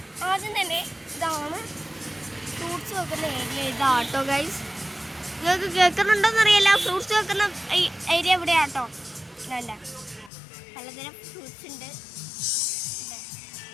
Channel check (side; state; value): right; drops out; at 10.3 s